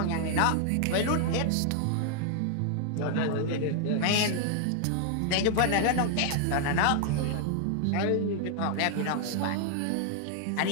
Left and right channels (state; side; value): different; both; correlation 0.00